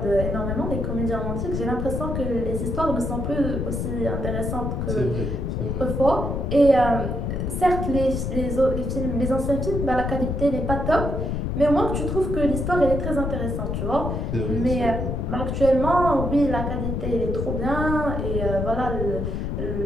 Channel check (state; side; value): noise; left; rumble, 2 dB below the sound